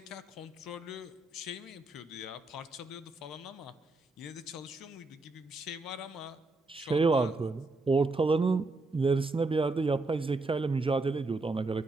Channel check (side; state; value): left; quieter; 3.2 dB